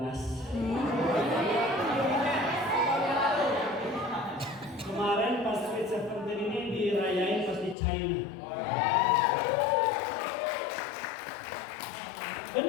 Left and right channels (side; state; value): right; drops out; at 7.8 s